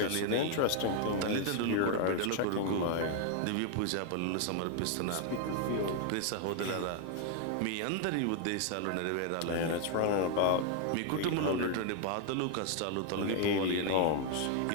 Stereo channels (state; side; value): different; both; correlation 0.00